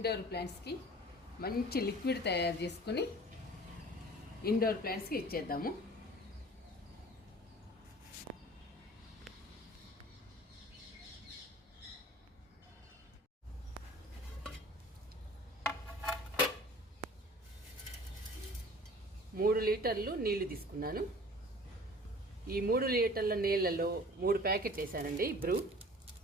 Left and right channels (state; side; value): normal; both; correlation 0.46